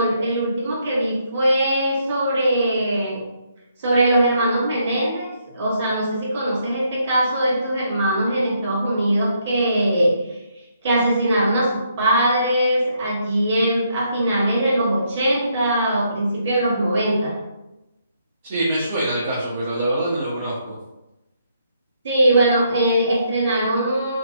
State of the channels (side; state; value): both; inverted; correlation -0.74